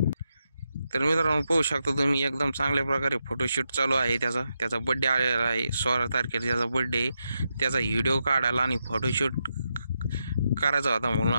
तर मित्रांनो पाहू शकता तुम्ही एकदम चांगल्या प्रकारे फोटोशूट चालू आहे त्याचा बर्थडे आलेला आहे। 16 तारखेला त्याचा बर्थडे, त्याचा व्हिडिओ काढायला आणि फोटोशूट करायचा होता म्हणून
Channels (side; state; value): both; inverted; correlation -0.85